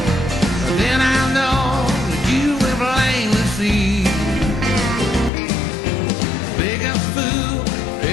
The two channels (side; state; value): right; drops out; at 5.3 s